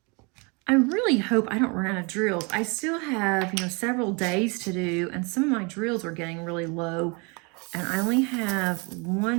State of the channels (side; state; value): left; quieter; 31.3 dB